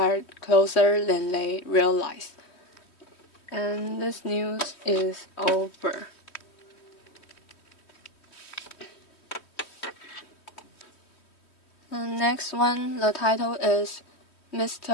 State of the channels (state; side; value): late; right; 3.1 ms